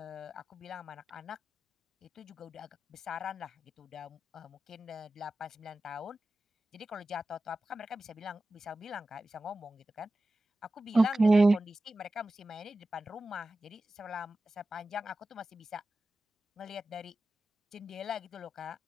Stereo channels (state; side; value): normal; both; correlation 0.94